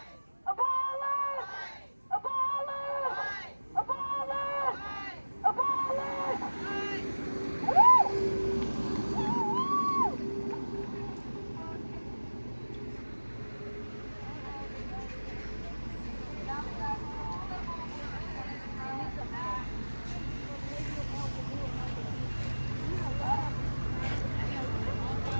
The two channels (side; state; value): both; inverted; correlation -1.00